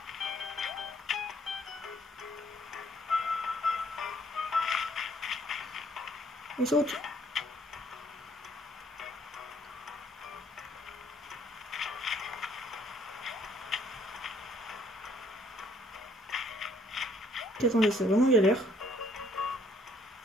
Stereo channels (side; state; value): both; normal; correlation 0.63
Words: On saute. Attendez, c'est vraiment galère.